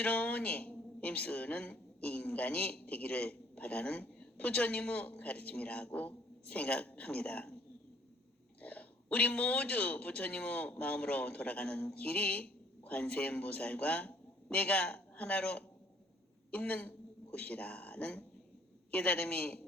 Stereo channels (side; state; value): both; normal; correlation 0.60